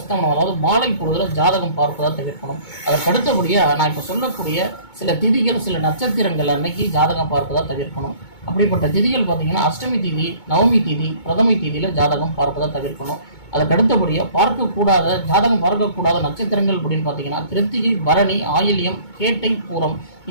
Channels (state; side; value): late; right; 2.2 ms